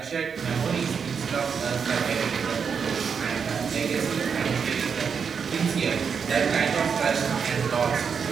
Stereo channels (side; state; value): left; quieter; 6.4 dB